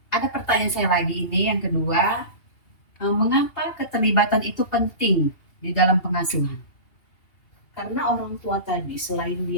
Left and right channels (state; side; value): late; right; 2.8 ms